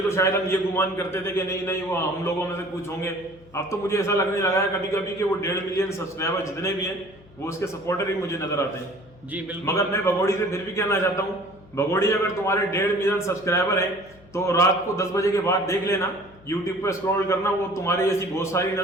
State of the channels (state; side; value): noise; left; hum, 25 dB below the sound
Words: तो शायद हम ये गुमान करते थे कि नहीं वो हम लोगों में से कुछ होंगे, अब तो मुझे ऐसा लगने लगा है कभी कभी कि वो 1.5 मिलियन सब्सक्राइबर जितने भी हैं वो उसके सपोर्टर ही मुझे नजर आते हैं। जी बिल्कुल। मगर मैं भगोड़ी से फिर भी कहना चाहता हूँ, भगोड़ी अगर तुम्हारे 1.5 मिलियन सब्सक्राइबर है तो रात को 10 बजे के बाद देख लेना, यूट्यूब पे स्क्रॉल करना, वो तुम्हारी ऐसी बहुत सारी